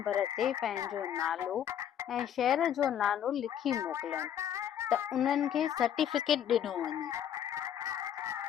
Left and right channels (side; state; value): right; quieter; 9.7 dB